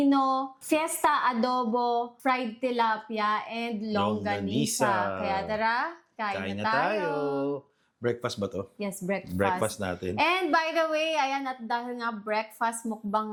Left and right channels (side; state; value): both; identical; correlation 1.00